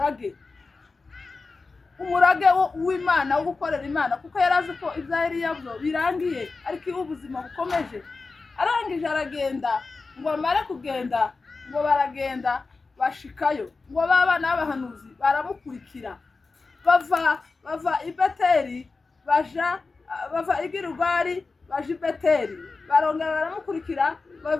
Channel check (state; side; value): quieter; right; 4.0 dB